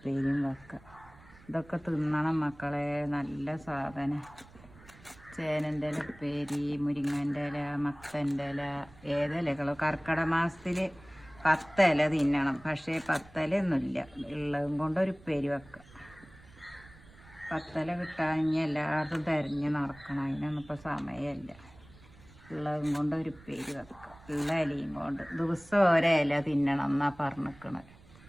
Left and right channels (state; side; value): noise; right; rumble, 23 dB below the sound